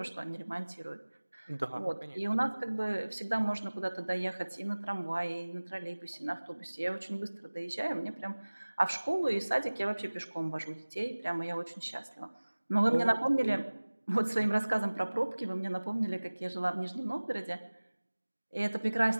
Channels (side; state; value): both; inverted; correlation -1.00